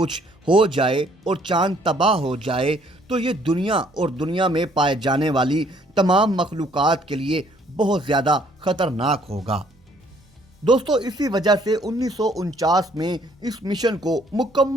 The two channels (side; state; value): both; normal; correlation 0.63